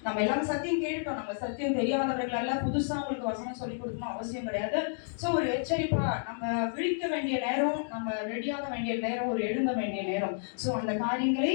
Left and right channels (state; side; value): silent; right; digital silence